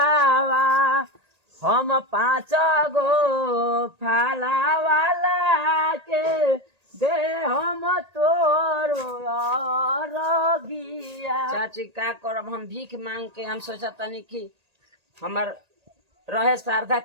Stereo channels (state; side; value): late; left; 1.8 ms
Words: हम 5 गो फाला वाला के दे हम तोरो रगिया। चाची का करब हम भीख मांग के हम सोचा तनी कि हमार रहे श्रद्धा